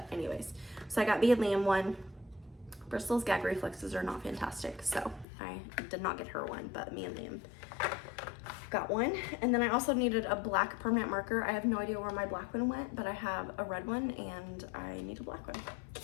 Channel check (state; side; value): drops out; right; at 5.2 s